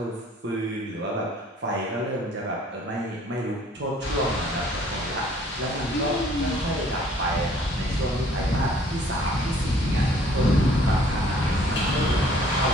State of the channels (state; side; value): normal; both; correlation 0.58